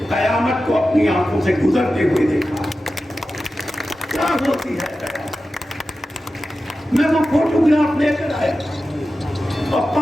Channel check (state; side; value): normal; both; correlation 0.93